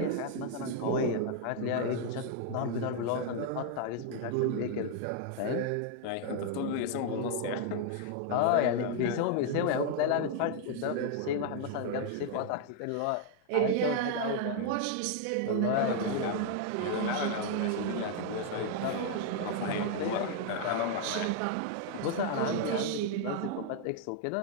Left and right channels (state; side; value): different; both; correlation 0.00